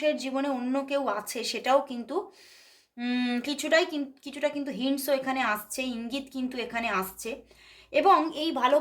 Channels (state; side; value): identical; both; correlation 1.00